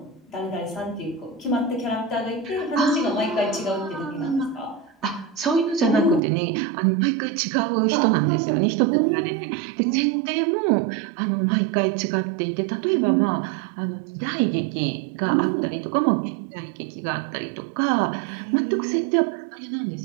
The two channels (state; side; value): drops out; left; at 6.2 s